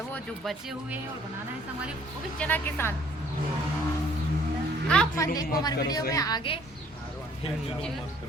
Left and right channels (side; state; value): both; normal; correlation 0.60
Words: जो बचे हुए हैं और बनाना है हमारे, वो भी चना के साथ। आप मन देखो हमारे वीडियो में आगे।